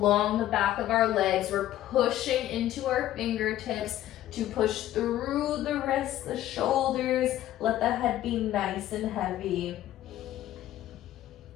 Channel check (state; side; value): quieter; right; 13.4 dB